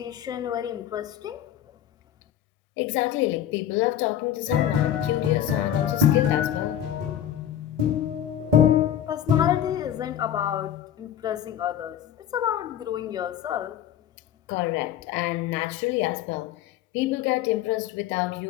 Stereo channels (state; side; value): quieter; right; 10.6 dB